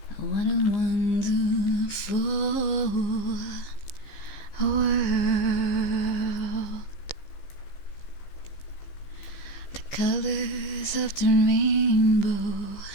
what a wonderful world. The colors of the rainbow,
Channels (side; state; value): right; late; 15 ms